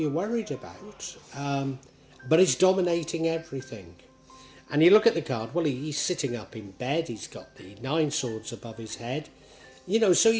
worried about, but it's dominating everything. And you look at the card, well, he's sitting up in bed, he's got the 9 swords above his head, you know, so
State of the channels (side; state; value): both; identical; correlation 1.00